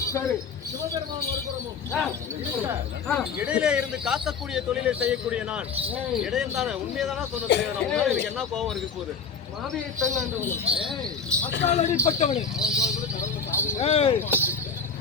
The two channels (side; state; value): right; quieter; 5.8 dB